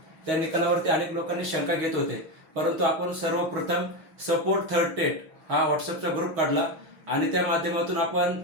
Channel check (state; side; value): late; left; 6.3 ms